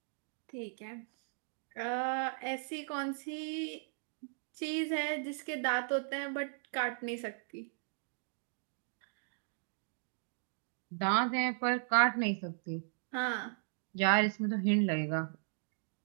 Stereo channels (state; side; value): silent; left; digital silence